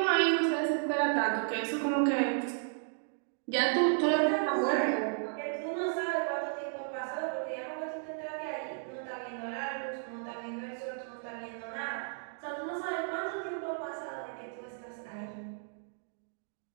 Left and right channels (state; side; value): silent; left; digital silence